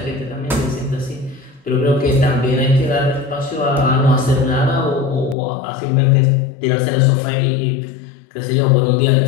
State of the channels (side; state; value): right; drops out; at 5.4 s